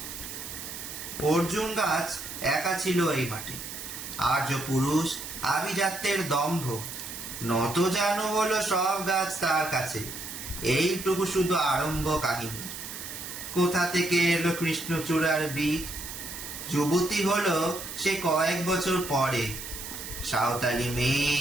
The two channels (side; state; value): right; noise; hiss, 9 dB below the sound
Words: অর্জুন গাছ একা ছিল এই মাঠে, আর্য পুরুষ আভিজাত্যের দম্ভ, নত জানু হলো সব গাছ তার কাছে। এইটুকু শুধু আরম্ভ কাহিনী। কোথা থেকে এলো কৃষ্ণচূড়ার বীজ? যুবতী হলো সে কয়েক বছর পরে। সাঁওতালি মেয়ে,